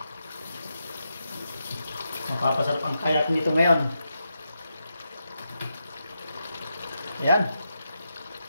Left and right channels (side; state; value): both; inverted; correlation -0.85